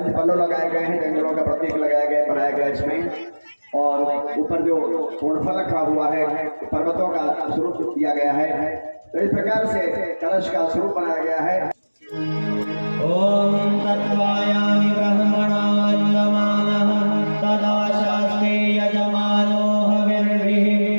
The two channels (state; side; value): inverted; both; correlation -1.00